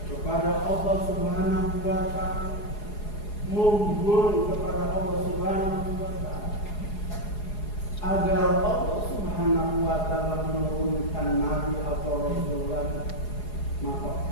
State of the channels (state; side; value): late; right; 4.8 ms